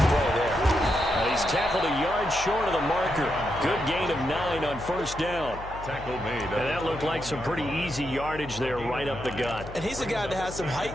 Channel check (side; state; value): left; noise; hum, 13 dB below the sound